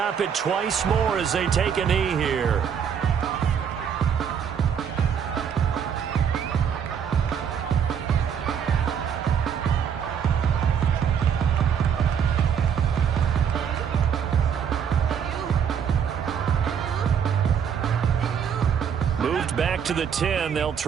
it twice more as they take a knee here. moved back to the 10. They'll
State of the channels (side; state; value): left; quieter; 7.7 dB